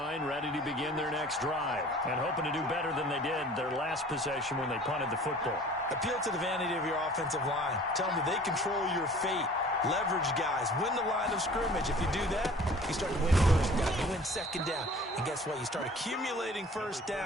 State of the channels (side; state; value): both; normal; correlation 0.47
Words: ready to begin their next drive, and hoping to do better than they did their last possession when they punted the football. Appeal to the vanity of your offensive line. Tell them that they control your fate. Leverage guys. Win the line of scrimmage. If you do that, you start to win 1st down. You win 2nd down. And guess what? You start accumulating 1st